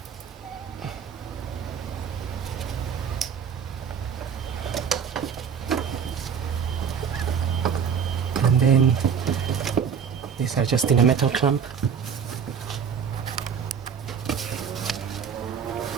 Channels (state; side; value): quieter; left; 7.0 dB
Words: then these are just in a metal clamp.